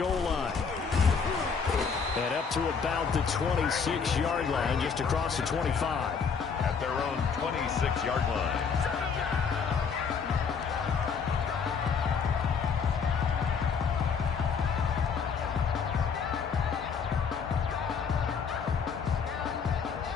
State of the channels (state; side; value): quieter; right; 6.0 dB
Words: line. And up to about the 26-yard line, just across the 25. At their own 26-yard line.